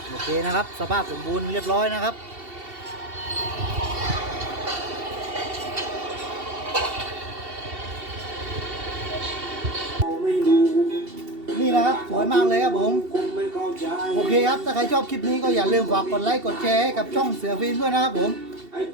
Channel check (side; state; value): left; late; 2.7 ms